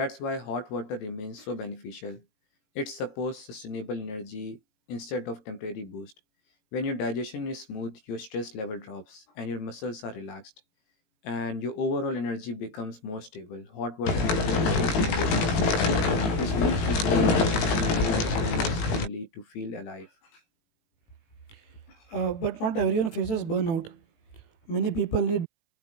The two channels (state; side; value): late; right; 18 ms